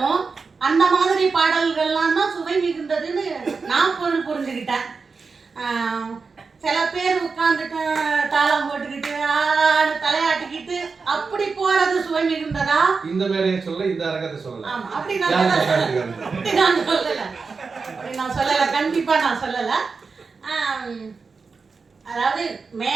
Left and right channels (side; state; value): left; quieter; 4.7 dB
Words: அந்த மாதிரி பாடல்கள்லாம் தான் சுவை மிகுந்ததுன்னு நான் புரிஞ்சுக்கிட்டேன். சில பேர் உட்காந்துட்டு தாளம் போட்டுக்கிட்டு தலையாட்டிக்கிட்டு அப்படி போறது சுவை மிகுந்ததா? இந்த மேடையை சொல்ல, இந்த அரங்கத்தை சொல்லல. ஆமா, அப்படி நான் சொல்லல, கண்டிப்பா நான் சொல்லல. அதாவது